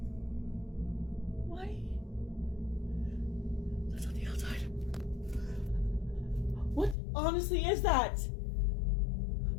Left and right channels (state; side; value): drops out; right; at 7.0 s